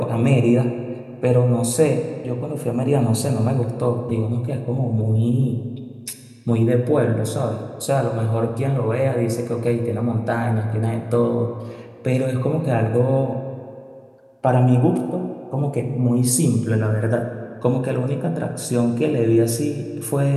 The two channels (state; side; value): identical; both; correlation 1.00